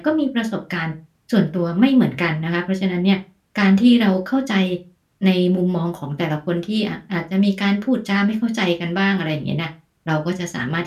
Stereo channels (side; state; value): both; identical; correlation 1.00